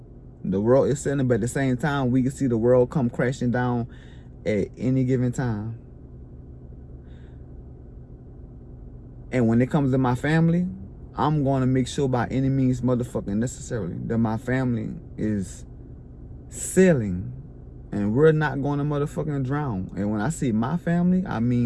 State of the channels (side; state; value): both; identical; correlation 1.00